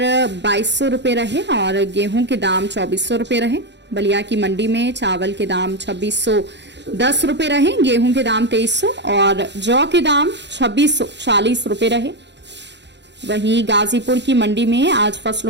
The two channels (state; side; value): late; left; 0.51 ms